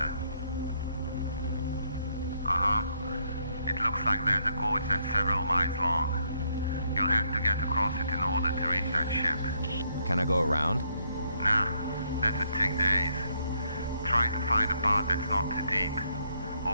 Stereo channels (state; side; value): inverted; both; correlation -0.73